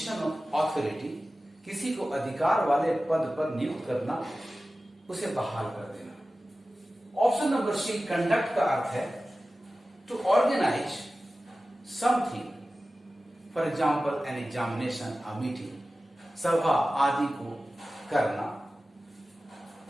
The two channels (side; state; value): both; normal; correlation 0.95